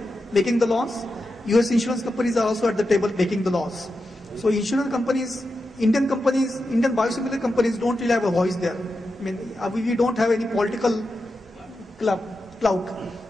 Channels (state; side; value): normal; both; correlation 0.89